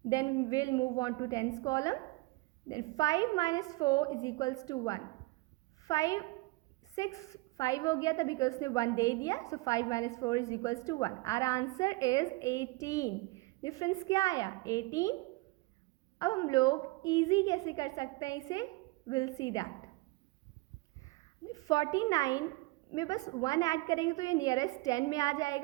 Then will move on to tens column. Then 5 minus 4 is equals to 1. 5 हो गया था बिकॉज उसने 1 दे दिया. So 5 minus 4 is equals to 1. Our answer is 18. Difference क्या आया? 18. अब हम लोग इजी कैसे कर सकते हैं इसे? Will see that. 49 में बस 1 ऐड करेंगे तो ये नियरेस्ट 10 में आ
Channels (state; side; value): quieter; left; 22.8 dB